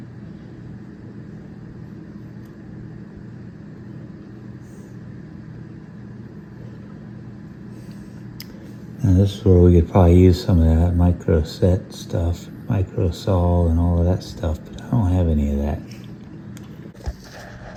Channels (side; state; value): both; identical; correlation 1.00